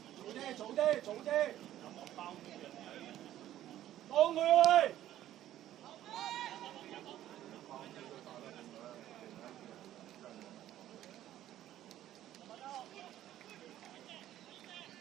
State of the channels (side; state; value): left; quieter; 12.8 dB